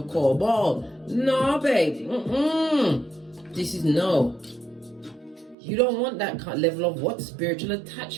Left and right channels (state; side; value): drops out; left; at 5.6 s